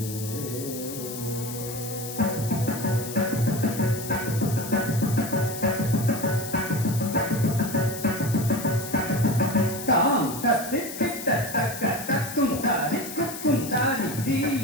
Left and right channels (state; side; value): noise; left; hiss, 10 dB below the sound